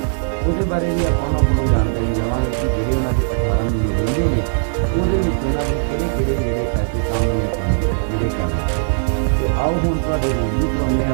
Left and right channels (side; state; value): left; silent; digital silence